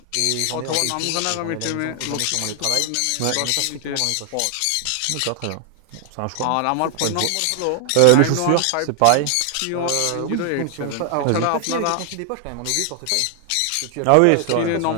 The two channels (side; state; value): both; different; correlation 0.00